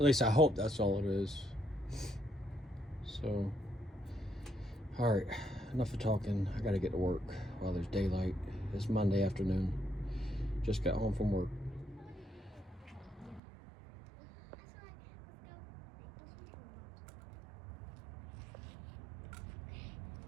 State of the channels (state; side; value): drops out; left; at 13.4 s